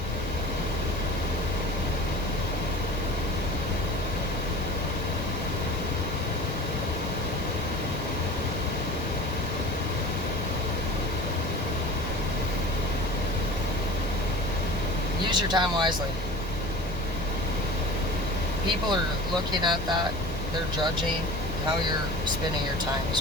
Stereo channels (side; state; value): both; normal; correlation 0.38